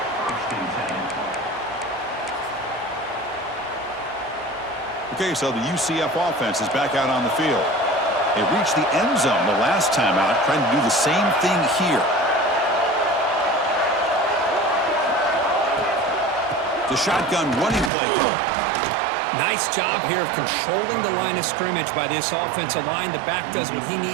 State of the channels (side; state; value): left; drops out; at 17.9 s